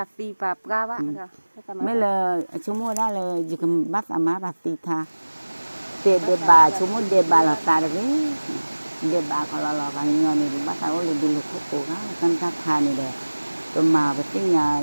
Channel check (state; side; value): inverted; both; correlation -1.00